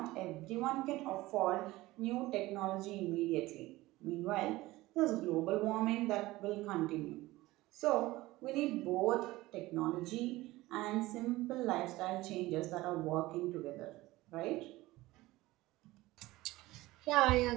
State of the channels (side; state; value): left; quieter; 18.6 dB